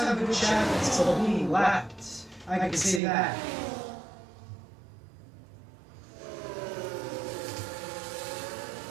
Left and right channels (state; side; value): drops out; left; at 3.0 s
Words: a good chance of being lapped. I can say that.